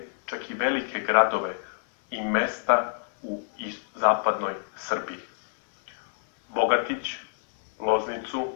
čak i velike gradove i mesta u zapadnoj Srbiji. Bogatić,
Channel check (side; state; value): right; silent; 60 dB below the other